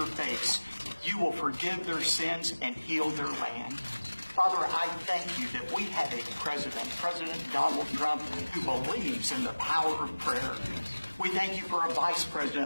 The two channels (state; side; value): inverted; both; correlation -1.00